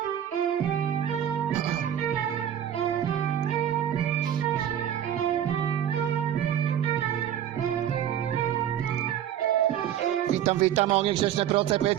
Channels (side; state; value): left; quieter; 10.3 dB